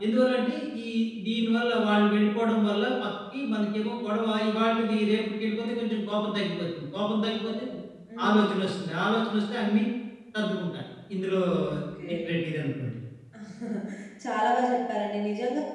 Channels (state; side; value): identical; both; correlation 1.00